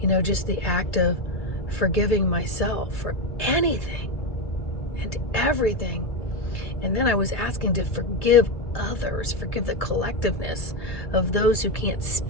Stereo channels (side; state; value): right; late; 1.7 ms